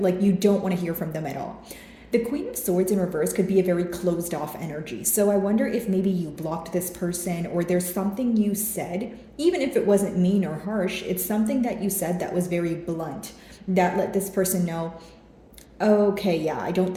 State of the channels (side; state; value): both; identical; correlation 1.00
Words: you don't want to hear from them at all. The Queen of Swords in reverse could be a very closed off energy. So I wonder if maybe you blocked this person, or there's something you said, even if it wasn't mean or harsh, it's something that you said that was very blunt, that let this person know, okay, yeah, I don't